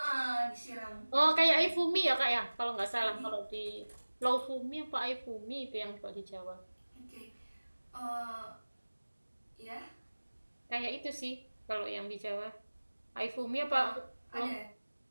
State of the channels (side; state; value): both; inverted; correlation -1.00